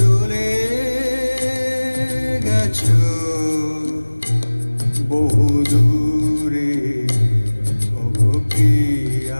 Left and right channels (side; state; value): both; inverted; correlation -1.00